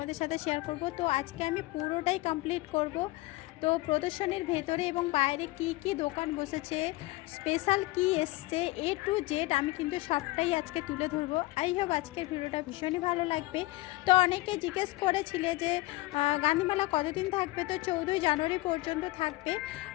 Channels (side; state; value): right; quieter; 20.1 dB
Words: সাথে শেয়ার করব। তো আজকে আমি পুরোটাই কমপ্লিট করব। তো প্রদর্শনীর ভেতরে এবং বাইরে কি কি দোকান বসেছে, স্পেশাল কি এসছে, এ টু জেড আমি কিন্তু সবটাই আজকে তুলে ধরবো। আই হোপ আজকের ভিডিওটা ভীষণই ভালো লাগবে। তো অনেকে জিজ্ঞেস করেছিলে যে গান্ধীমেলা কতদিন থাকবে। তো 14ই জানুয়ারি পর্যন্ত থাকবে।